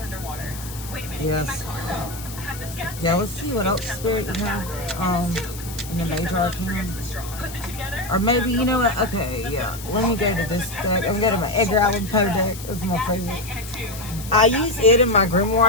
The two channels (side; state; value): left; noise; hiss, 13 dB below the sound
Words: Yes. Yeah, let's see what else spirit you have in the major arcana. Or maybe, you know what? Okay, yeah. Let me go to this deck. I'm going to go to my Edgar Allan Poe deck. That's my favorite. I use it in my